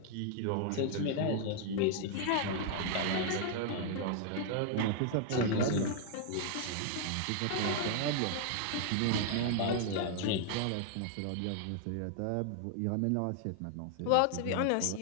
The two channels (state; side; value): different; both; correlation 0.00